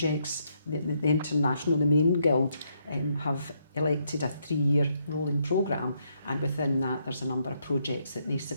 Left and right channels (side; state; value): both; inverted; correlation -0.75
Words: The international, the main Guild have elected a 3-year rolling programme, and within that there's a number of projects that they